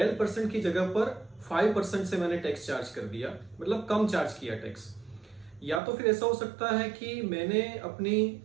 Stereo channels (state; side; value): drops out; left; at 5.8 s